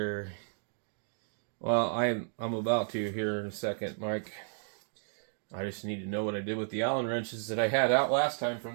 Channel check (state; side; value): silent; left; 56 dB below the other